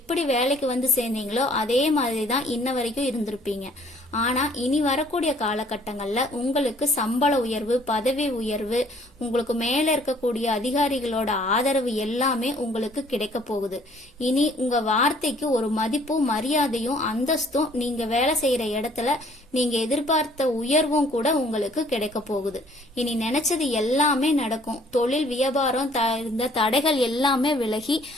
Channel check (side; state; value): both; normal; correlation 0.59